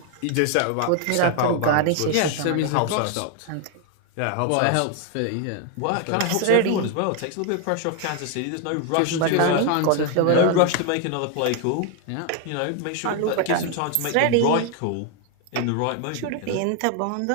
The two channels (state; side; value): different; both; correlation 0.01